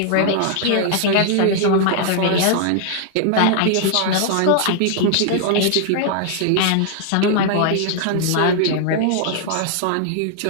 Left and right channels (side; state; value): both; different; correlation 0.00